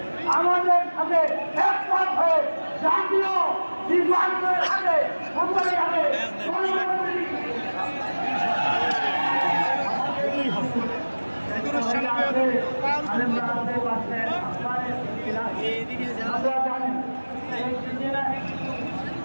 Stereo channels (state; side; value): inverted; both; correlation -1.00